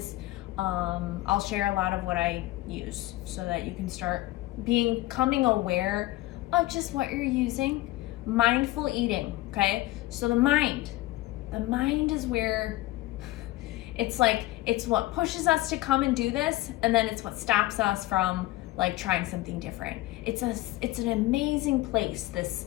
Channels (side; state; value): right; quieter; 17.8 dB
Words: I'll share a lot of what I use so that you can start becoming aware of just what you're using. Mindful eating, okay? So the mind is where it's what pushes us to come and do this, and then it's what stops us from like trying something different. It's an amazing place, this